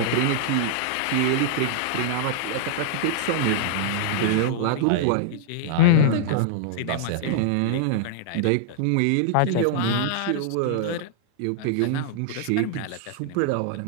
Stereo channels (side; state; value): both; different; correlation -0.01